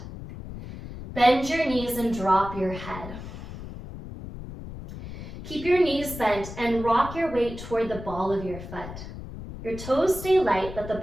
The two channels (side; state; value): left; noise; rumble, 11 dB below the sound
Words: Bend your knees and drop your head. Keep your knees bent and rock your weight toward the ball of your foot. Your toes stay light, but the